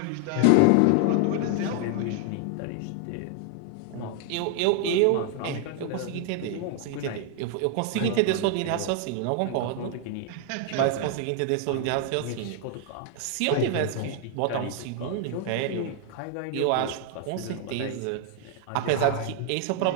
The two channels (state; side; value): different; both; correlation 0.00